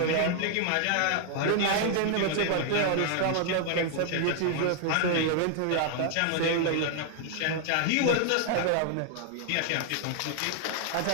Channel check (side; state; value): both; different; correlation 0.00